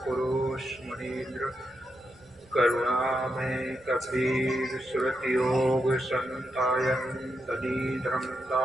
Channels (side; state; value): right; noise; rumble, 28 dB below the sound